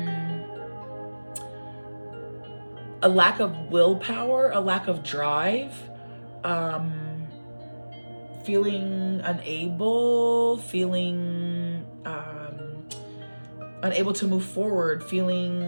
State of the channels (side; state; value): both; inverted; correlation -1.00